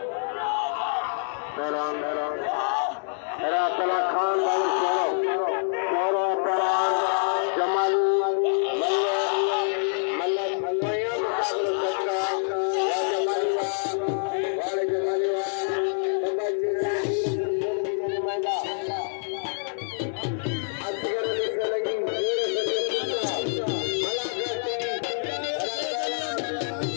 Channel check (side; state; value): right; silent; 61 dB below the other